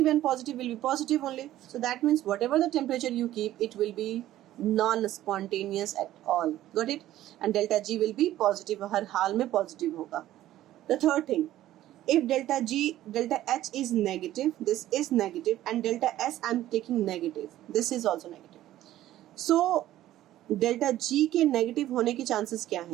and positive will be positive only. So that means whatever the temperature you keep, it will be non-spontaneous at all. Got it? And delta G will be positive. हर हाल में positive होगा. The third thing, if delta H is negative, this is negative, and delta S I am taking negative, this is also negative. So delta G के negative होने की chances क्या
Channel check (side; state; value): left; quieter; 13.9 dB